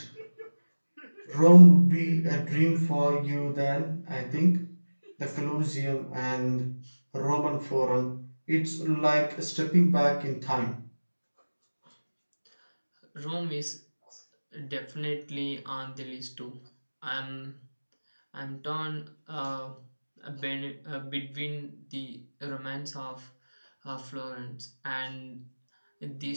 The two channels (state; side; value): inverted; both; correlation -1.00